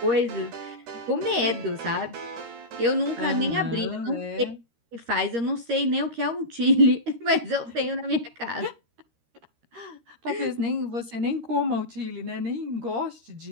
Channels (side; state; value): left; late; 13 ms